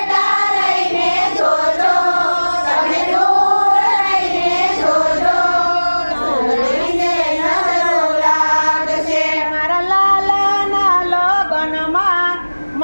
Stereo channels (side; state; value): both; inverted; correlation -1.00